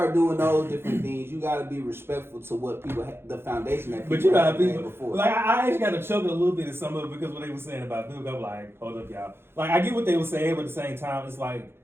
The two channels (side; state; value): left; late; 0.11 ms